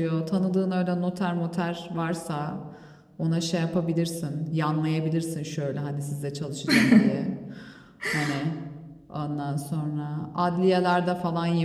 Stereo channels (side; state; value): both; identical; correlation 1.00